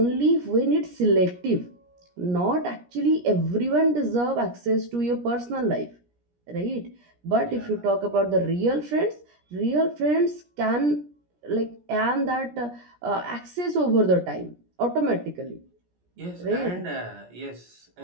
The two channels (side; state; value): left; late; 17 ms